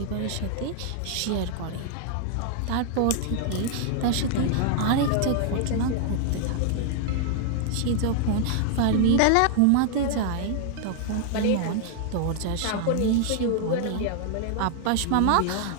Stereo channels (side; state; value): both; different; correlation 0.00